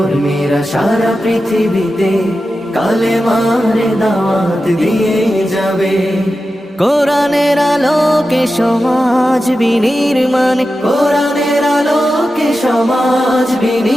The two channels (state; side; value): normal; both; correlation 0.92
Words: সারা পৃথিবীতে কালেমার দাওয়াত দিয়ে যাবে। কোরআনের আলোকে সমাজ বিনির্মাণ, কোরআনের আলোকে সমাজ